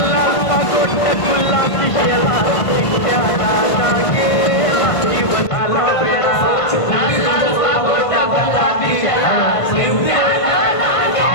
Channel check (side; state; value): right; late; 1.5 ms